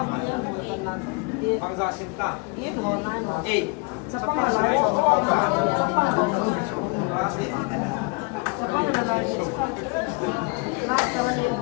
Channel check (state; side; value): quieter; right; 30.7 dB